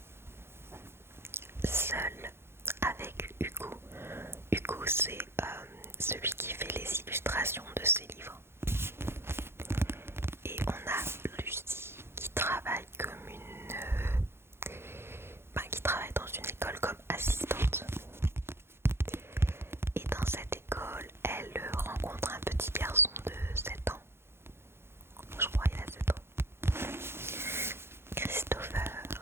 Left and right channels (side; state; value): left; late; 0.12 ms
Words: seul avec Hugo. Hugo, c'est celui qui fait les illustrations de ses livres. Et on a Lucie qui travaille comme qui travaille dans une école comme assistante. Et dans cette école, elle rencontre un petit garçon de 7 ans. Je crois qu'il a 7 ans. Christopher.